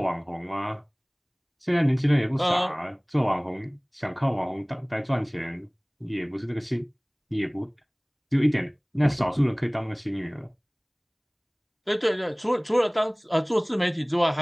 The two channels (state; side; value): identical; both; correlation 1.00